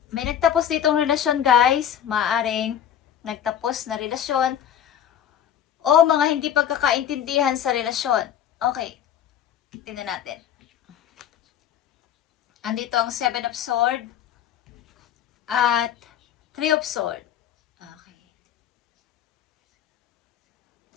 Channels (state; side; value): quieter; right; 9.7 dB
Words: May nagtapos ditong relasyon, guys. Maaaring nagtapos na relasyon o mga hindi pagkakaintindihan sa relasyon. Okay. Tingnan natin. Andito ang 7 of Swords at 3 of Swords. Okay.